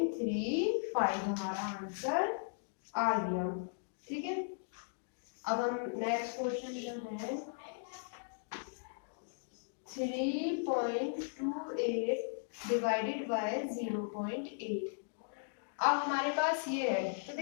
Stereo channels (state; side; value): silent; right; digital silence